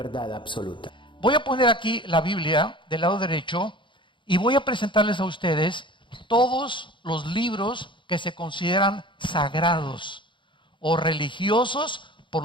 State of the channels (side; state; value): right; late; 0.23 ms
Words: absoluta. Voy a poner aquí la Biblia del lado derecho y voy a presentarles a ustedes todos los libros que se consideran sagrados o religiosos por